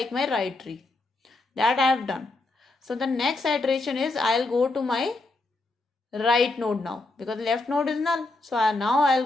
my right tree. That I have done. So the next iteration is I'll go to my right node now, because left node is null. So now I'll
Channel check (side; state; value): right; quieter; 3.1 dB